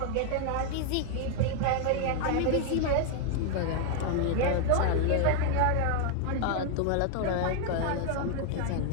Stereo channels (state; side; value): different; both; correlation 0.00